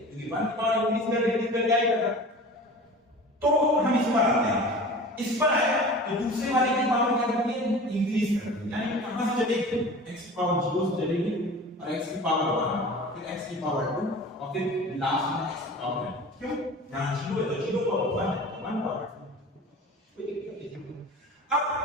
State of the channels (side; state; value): both; normal; correlation 0.38